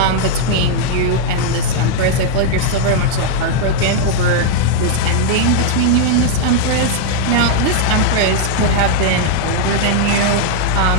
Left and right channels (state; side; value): different; both; correlation -0.01